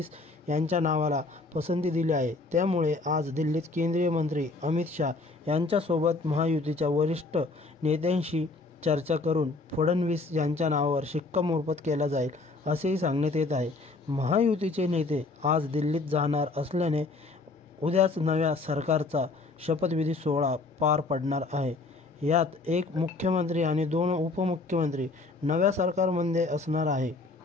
यांच्या नावाला पसंती दिली आहे. त्यामुळे आज दिल्लीत केंद्रीय मंत्री अमित शाह यांच्यासोबत महायुतीच्या वरिष्ठ नेत्यांशी चर्चा करून फडणवीस यांच्या नावावर शिक्कामोर्तब केला जाईल असेही सांगण्यात येत आहे. महायुतीचे नेते आज दिल्लीत जाणार असल्याने उद्याच नव्या सरकारचा शपथविधी सोहळा पार पडणार आहे. यात एक मुख्यमंत्री आणि 2 उपमुख्यमंत्री नव्या सरकारमध्ये असणार आहे.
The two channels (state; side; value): quieter; right; 3.6 dB